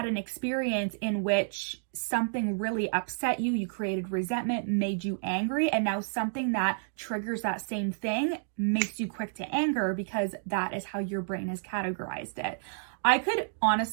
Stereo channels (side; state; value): left; silent; digital silence